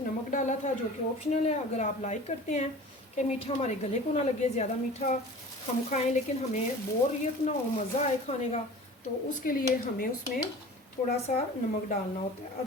नमक डाला था, जो कि ऑप्शनल है। अगर आप लाइक करते हैं कि मीठा हमारे गले को ना लगे, ज़्यादा मीठा हम खाएं लेकिन हमें बोरियत ना हो, मज़ा आए खाने का, तो उसके लिए हमें उसमें थोड़ा सा नमक डालना होता है।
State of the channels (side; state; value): both; normal; correlation 0.40